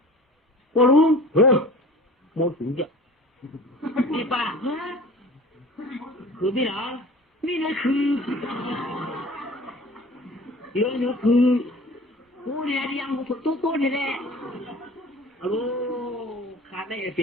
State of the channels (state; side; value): normal; both; correlation 0.42